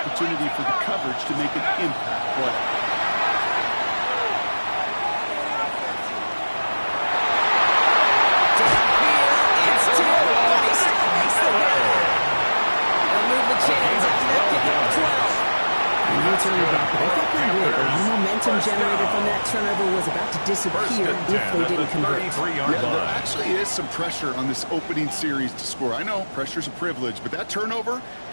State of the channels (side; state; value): both; inverted; correlation -1.00